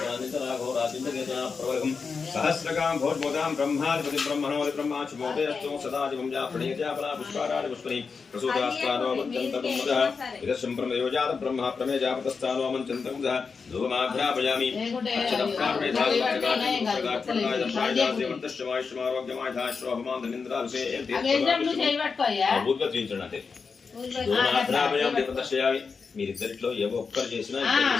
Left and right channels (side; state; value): right; quieter; 5.1 dB